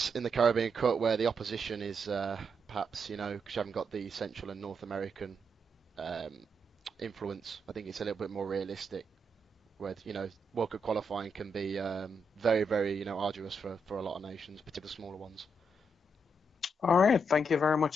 in the Caribbean Cup, where the opposition is perhaps, because you haven't got the Central and North American influence. I think it's a little bit more realistic, where World Cup qualifying can be very, very arduous for a lot of nations, particularly smaller ones. All right, thank you very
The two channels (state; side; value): normal; both; correlation 0.80